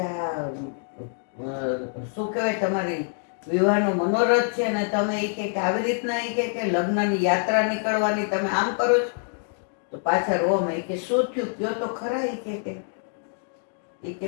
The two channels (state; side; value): silent; right; 61 dB below the other